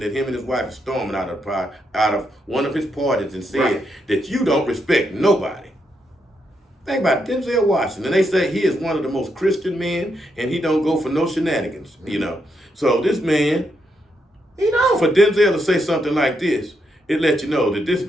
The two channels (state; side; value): normal; both; correlation 0.80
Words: that him and his wife are storming out of one of his parties and said that you don't respect nobody. Think about it, Denzel Washington. And they say he is one of the most Christian men, and he don't go for no shenanigans, you know. So this man, for Denzel to say something like this, it lets you know that this